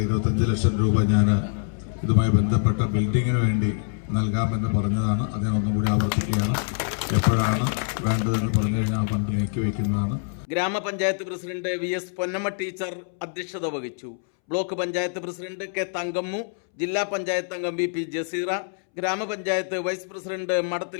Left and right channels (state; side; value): silent; right; 62 dB below the other